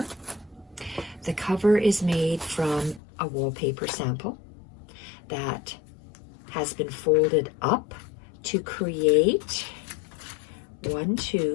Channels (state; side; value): drops out; right; at 3.0 s